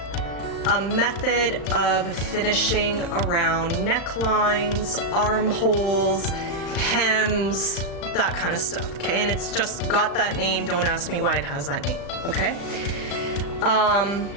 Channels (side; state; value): right; late; 35 ms